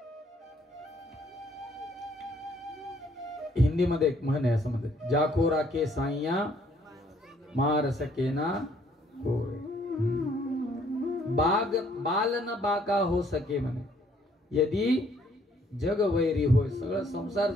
हिंदीमध्ये एक म्हण आहे, असं म्हणतात, जाको राखे साईया मार सकेना होय, बाल न बाका हो सके म्हणे. यदि जग वैरी होय, सगळं संसार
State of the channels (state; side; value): normal; both; correlation 0.64